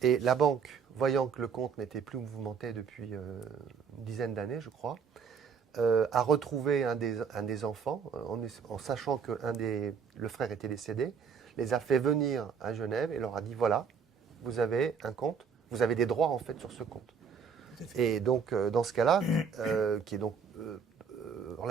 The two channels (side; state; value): left; quieter; 6.2 dB